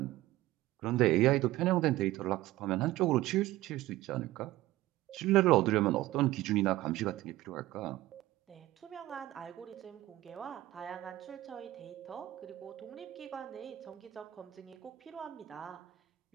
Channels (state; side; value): quieter; left; 16.2 dB